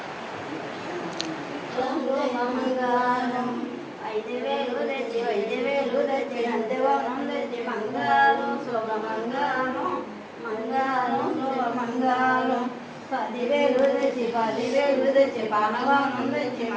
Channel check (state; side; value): identical; both; correlation 1.00